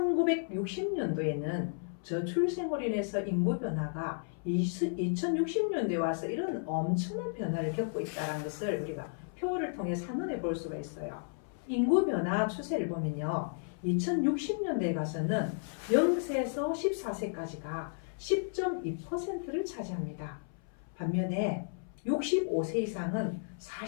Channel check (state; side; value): silent; right; 56 dB below the other